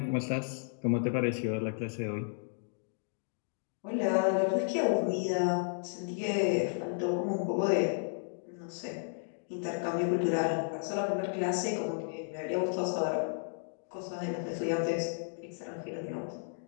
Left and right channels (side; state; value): right; silent; digital silence